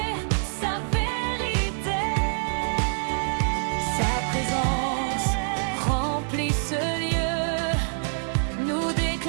sa vérité. Sa présence remplit ce lieu. Nous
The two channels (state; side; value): silent; left; 61 dB below the other